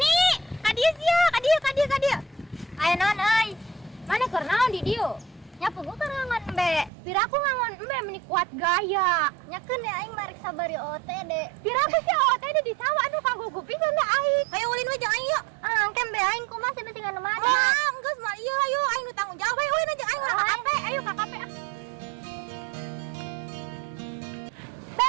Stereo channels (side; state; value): left; drops out; at 6.9 s